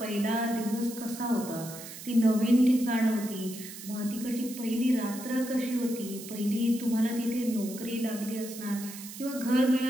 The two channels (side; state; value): right; noise; hiss, 12 dB below the sound